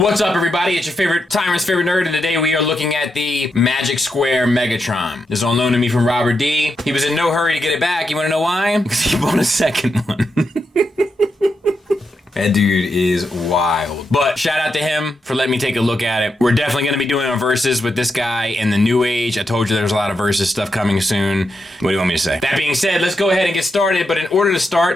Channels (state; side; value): normal; both; correlation 0.84